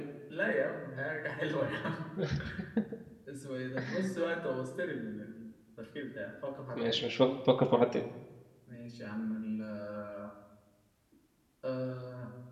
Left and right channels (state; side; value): identical; both; correlation 1.00